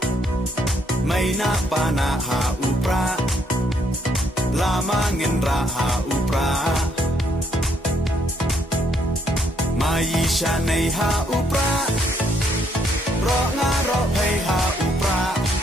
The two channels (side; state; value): both; normal; correlation 0.71